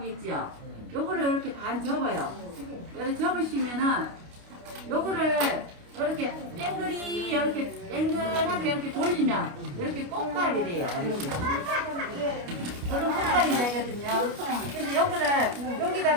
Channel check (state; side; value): late; left; 29 ms